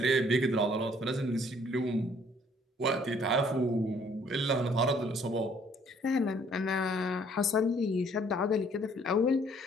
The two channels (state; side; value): normal; both; correlation 0.61